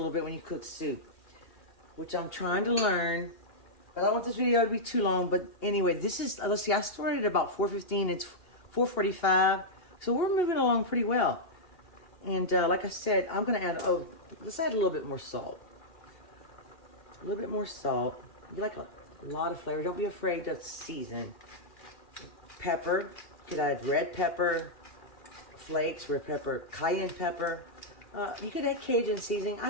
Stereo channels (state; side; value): late; right; 2.8 ms